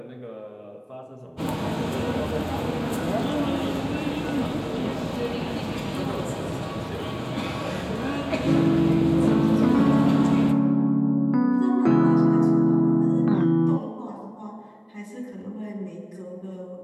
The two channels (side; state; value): both; identical; correlation 1.00